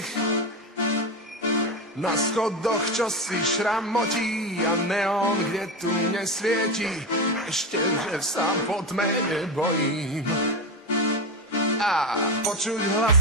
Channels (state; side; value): normal; both; correlation 0.17